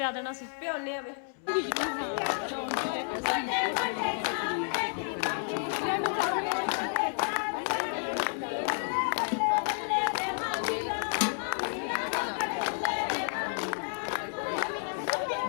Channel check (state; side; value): silent; right; 57 dB below the other